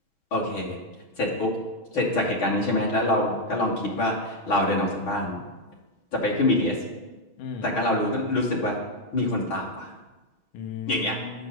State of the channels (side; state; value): right; late; 6.3 ms